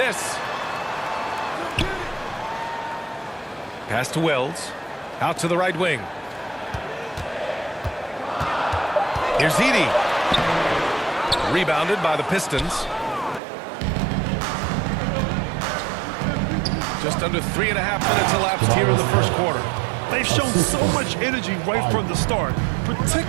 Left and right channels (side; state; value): left; drops out; at 13.4 s